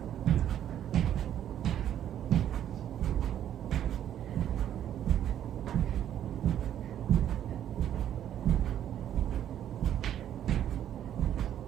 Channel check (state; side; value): quieter; left; 10.6 dB